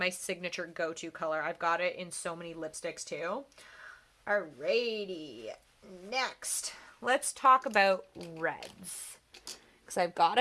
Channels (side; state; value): both; identical; correlation 1.00